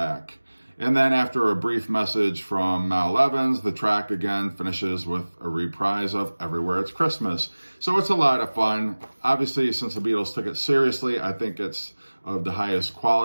And then after a brief message from Mal Evans, the track again finishes with a reprise of Everywhere It's Christmas. So it's a lot of fun. Obviously, since the Beatles took it seriously, I think it's of the highest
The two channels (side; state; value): both; inverted; correlation -1.00